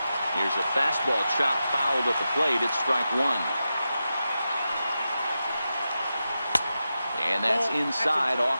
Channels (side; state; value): both; inverted; correlation -0.90